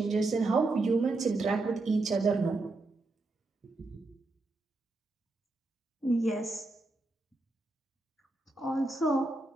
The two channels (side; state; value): left; quieter; 3.1 dB